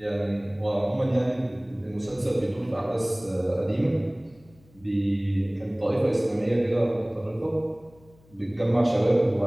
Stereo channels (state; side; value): noise; left; hum, 28 dB below the sound